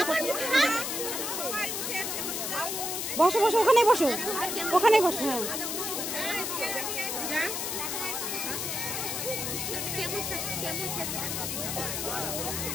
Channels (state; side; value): noise; left; hiss, 2 dB below the sound